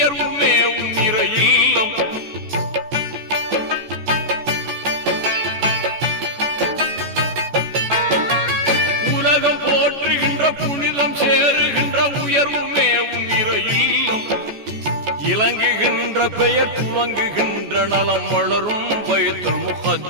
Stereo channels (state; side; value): late; left; 14 ms